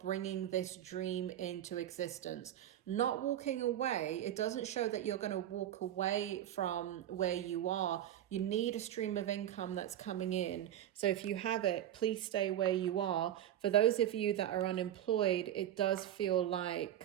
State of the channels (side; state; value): left; quieter; 11.6 dB